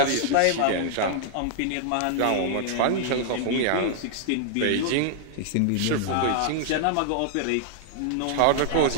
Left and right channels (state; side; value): different; both; correlation -0.01